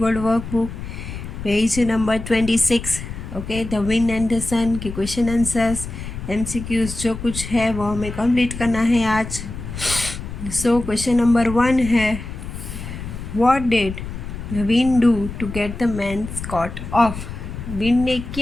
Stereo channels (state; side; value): noise; left; rumble, 9 dB below the sound